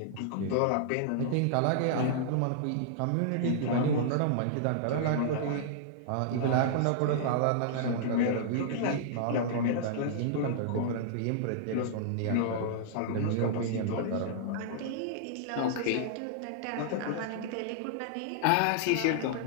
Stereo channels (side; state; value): both; different; correlation -0.01